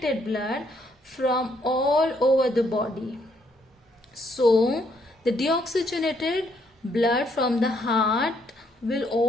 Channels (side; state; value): both; normal; correlation 0.71